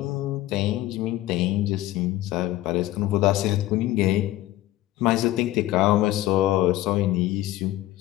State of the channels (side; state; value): right; quieter; 15.9 dB